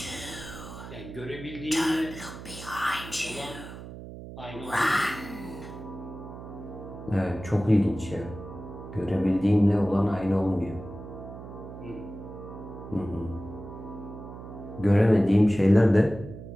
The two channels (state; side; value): noise; right; hum, 12 dB below the sound